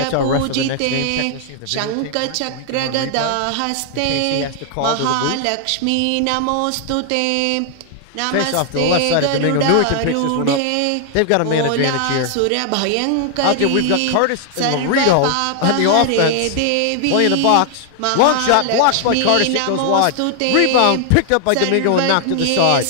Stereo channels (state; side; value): different; both; correlation 0.00